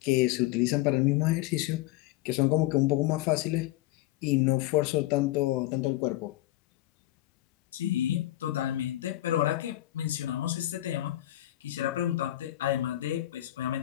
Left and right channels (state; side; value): quieter; right; 15.7 dB